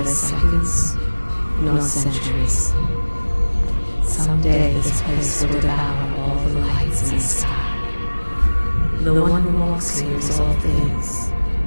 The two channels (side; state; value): both; inverted; correlation -1.00